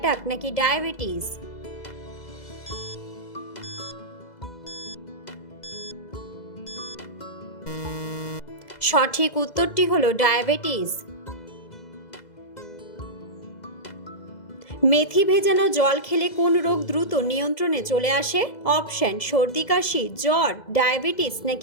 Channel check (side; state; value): right; late; 2.0 ms